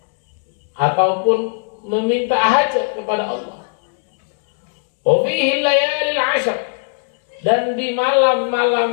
ataupun meminta hajat kepada Allah. Wa fihil layalil 'ashr, dan di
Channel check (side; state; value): right; silent; digital silence